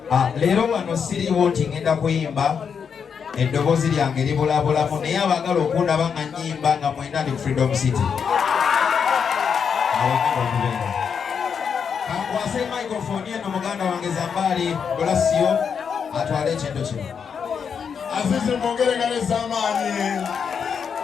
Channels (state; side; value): quieter; right; 6.7 dB